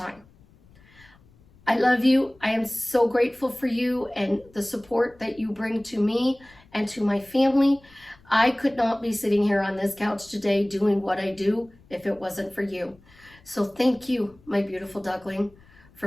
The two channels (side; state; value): left; noise; rumble, 28 dB below the sound